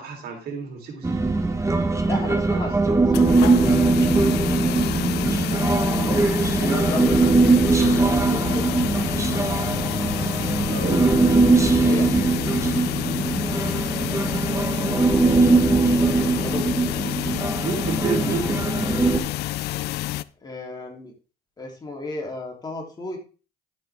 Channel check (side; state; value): both; normal; correlation 0.75